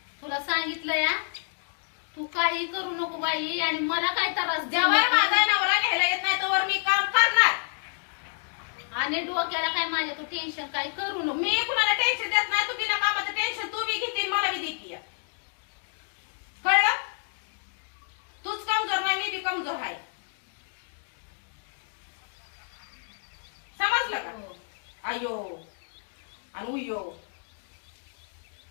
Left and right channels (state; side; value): silent; right; digital silence